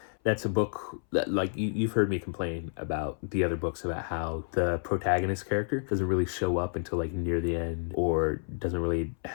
That's a book that, like, you've heard me complain about the other books about how the protagonist character doesn't really show up until like near the end, or doesn't really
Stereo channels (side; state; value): right; silent; 58 dB below the other